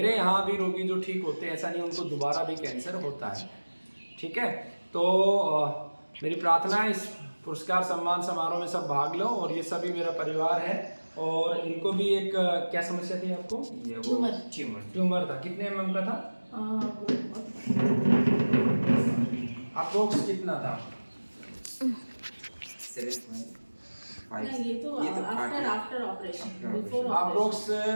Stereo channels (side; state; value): both; inverted; correlation -1.00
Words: यहाँ भी रोगी जो ठीक होते हैं, ऐसा नहीं उनको दोबारा भी कैंसर होता है। ठीक है, तो मेरी प्रार्थना है इस पुरस्कार सम्मान समारोह में सब भाग लो, और ये सभी मेरा परिवार है। और इनको भी एक क्या समस्या थी आपको? ट्यूमर था। कितने mm का था? अप्रोक्स कितना था? 7.5। ये तो आफ्टर ऑपरेशन, बिफोर अप्रोक्स